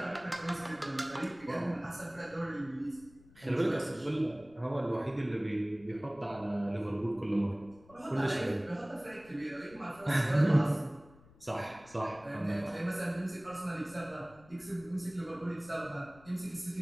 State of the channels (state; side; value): noise; left; rumble, 24 dB below the sound